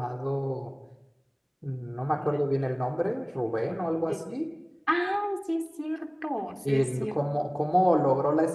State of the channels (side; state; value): both; identical; correlation 1.00